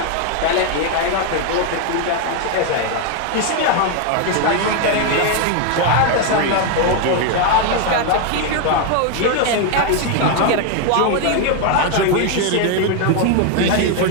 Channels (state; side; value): different; both; correlation 0.01